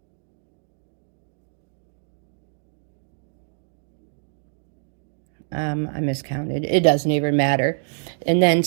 I miscounted. It doesn't even matter. And then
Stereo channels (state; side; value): silent; left; digital silence